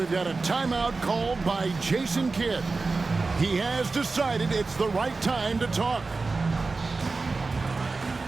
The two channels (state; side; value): quieter; left; 3.8 dB